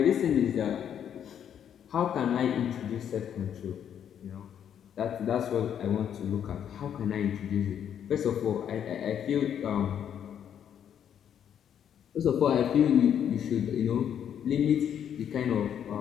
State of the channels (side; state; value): right; quieter; 9.1 dB